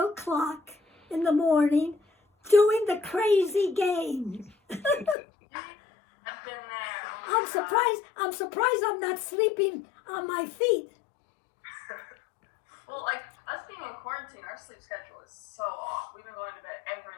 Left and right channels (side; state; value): right; drops out; at 5.2 s